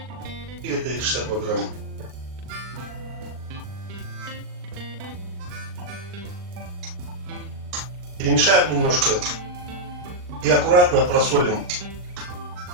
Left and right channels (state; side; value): late; left; 39 ms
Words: И это 62 грамма. Перемешаем немножко и аккуратно просолим